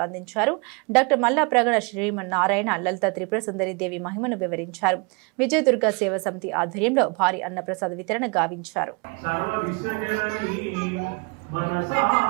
అందించారు. డాక్టర్ మల్లా ప్రగడ శ్రీమన్నారాయణ లలితా త్రిపుర సుందరి దేవి మహిమను వివరించారు. విజయదుర్గ సేవ సమితి ఆధ్వర్యంలో భారీ అన్నప్రసాద వితరణ గావించారు.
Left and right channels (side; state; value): left; quieter; 31.4 dB